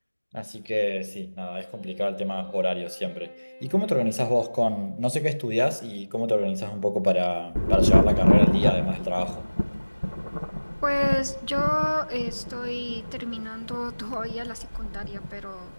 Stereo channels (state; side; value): inverted; both; correlation -1.00